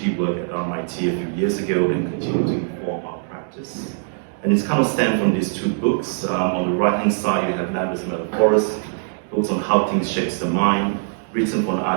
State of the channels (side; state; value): left; silent; digital silence